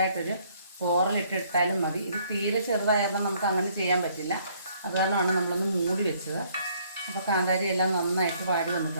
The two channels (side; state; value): both; inverted; correlation -0.65